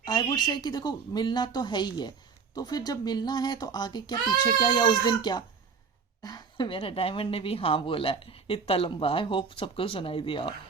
आई वुड से कि देखो मिलना तो है ही है, तो फिर जब मिलना है तो आगे क्या पीछे क्या या उस दिन क्या। मेरा डायमंड ने भी हाँ बोला है, इतना लंबा, आई होप सबको सुनाई दिया हो।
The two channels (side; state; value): left; quieter; 5.6 dB